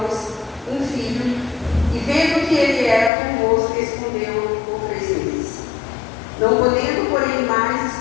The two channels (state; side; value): drops out; right; at 3.1 s